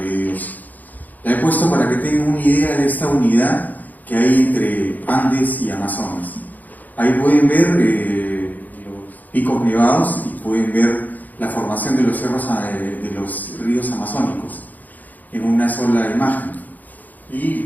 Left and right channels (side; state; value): right; late; 0.082 ms